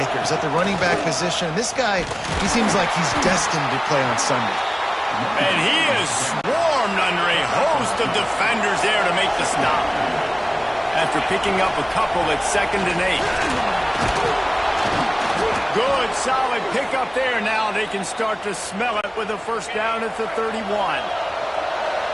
at the running back position. And this guy, he seems like he's destined to play on Sunday. And he is swarmed under a host of defenders there to make the stop. After picking up a couple at 2nd and 8. Good, solid pickup there. Now they can start to smell it with a first down at the 31.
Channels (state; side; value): identical; both; correlation 1.00